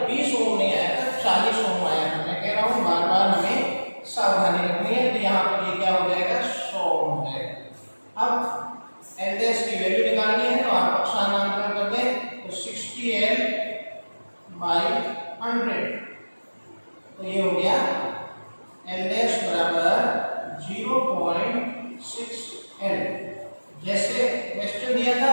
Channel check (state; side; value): inverted; both; correlation -1.00